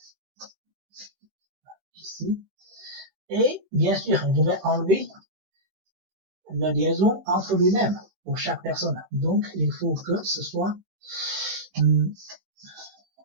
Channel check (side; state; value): left; late; 16 ms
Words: Ici. Et bien sûr, je vais enlever la liaison entre lui-même pour chaque personne. Donc, il faut que ce soit